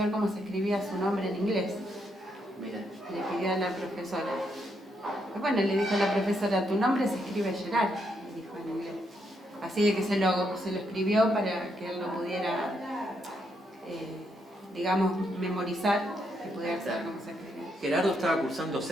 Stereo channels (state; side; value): normal; both; correlation 0.78